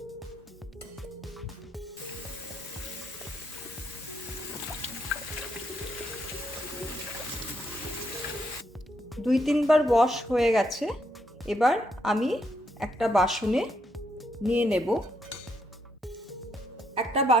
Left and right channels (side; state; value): both; normal; correlation 0.76